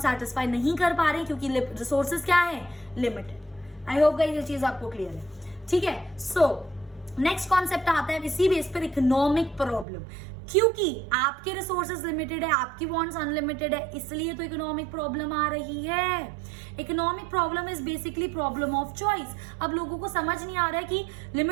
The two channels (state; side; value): drops out; left; at 9.9 s